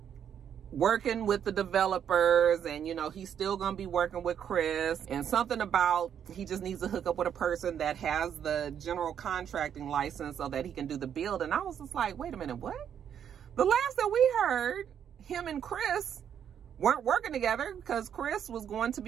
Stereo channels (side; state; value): left; quieter; 8.8 dB